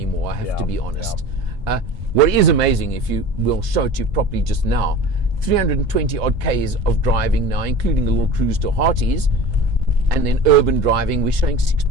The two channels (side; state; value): both; normal; correlation 0.36